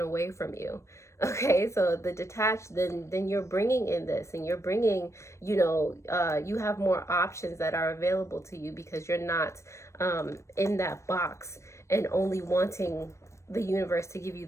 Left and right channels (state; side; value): late; right; 0.14 ms